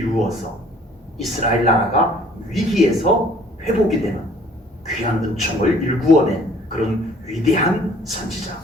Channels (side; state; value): both; normal; correlation 0.56